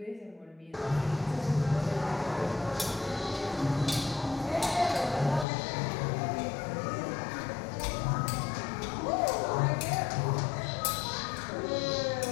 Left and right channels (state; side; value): drops out; right; at 5.5 s